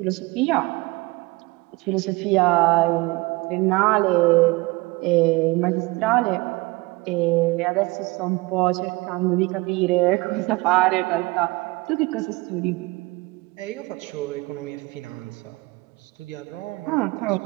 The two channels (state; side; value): quieter; left; 23.4 dB